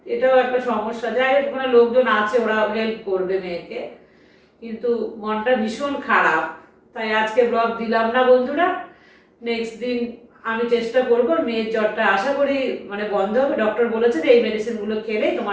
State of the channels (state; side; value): identical; both; correlation 1.00